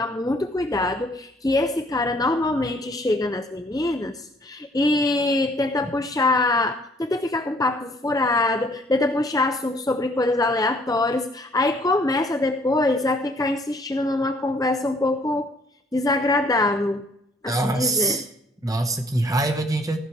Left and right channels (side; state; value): both; normal; correlation 0.62